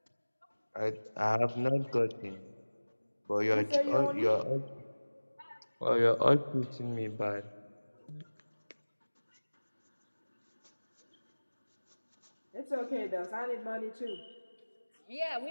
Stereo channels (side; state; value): both; inverted; correlation -1.00